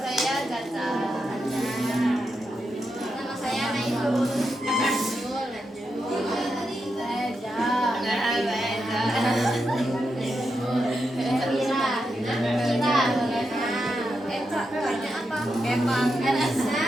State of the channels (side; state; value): both; normal; correlation 0.86